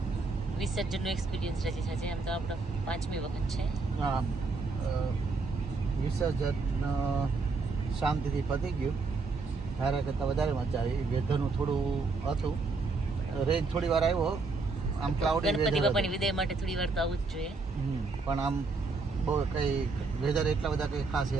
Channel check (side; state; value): left; quieter; 4.0 dB